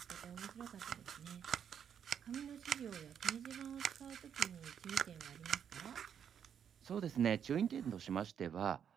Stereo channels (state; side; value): quieter; left; 8.3 dB